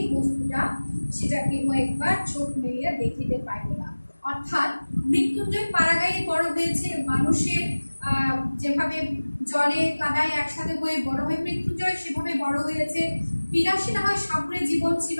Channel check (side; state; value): both; inverted; correlation -1.00